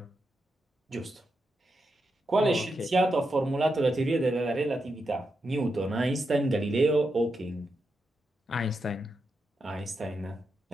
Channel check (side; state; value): both; normal; correlation 0.86